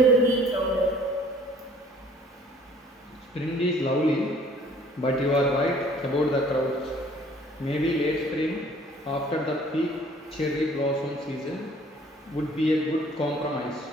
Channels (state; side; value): normal; both; correlation 0.55